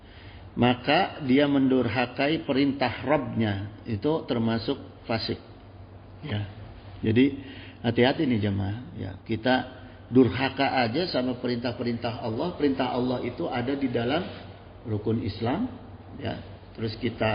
Maka dia mendurhakai perintah Rabbnya, itu termasuk fasik. Ya, jadi hati-hati nih jemaah. Ya, kita durhaka aja sama perintah-perintah Allah. Perintah Allah itu ada di dalam rukun Islam. Ya, terus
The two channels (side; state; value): both; identical; correlation 1.00